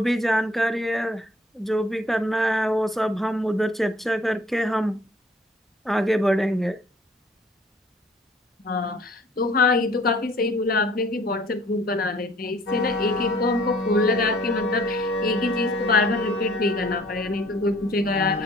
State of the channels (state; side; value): normal; both; correlation 0.56